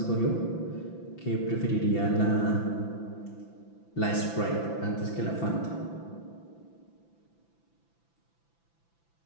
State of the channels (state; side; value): late; right; 5.9 ms